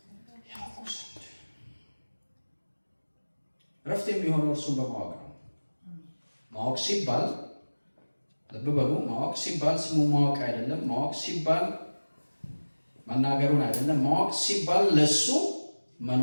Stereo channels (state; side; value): inverted; both; correlation -1.00